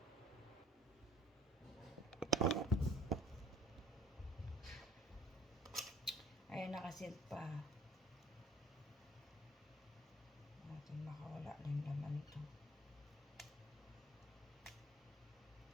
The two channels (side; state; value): both; normal; correlation 0.54